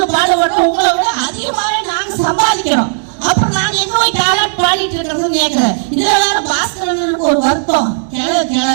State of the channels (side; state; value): left; silent; digital silence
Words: பாடுபடுறோம். உங்களை விட அதிகமாவே நாங்க சம்பாதிக்கிறோம். அப்புறம் நாங்க எங்க போய் தாளாட்டு பாடிட்டு இருக்கிறதுன்னு கேட்கிறேன். இதுல வேற பாஸ்கரனுக்கு ஒரு வருத்தம்.